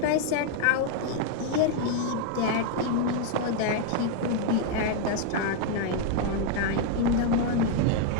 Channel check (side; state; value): both; different; correlation 0.00